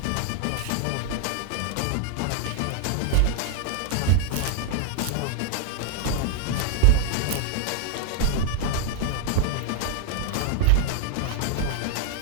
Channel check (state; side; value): different; both; correlation 0.00